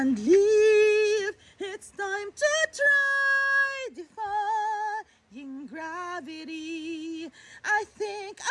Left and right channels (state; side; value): identical; both; correlation 1.00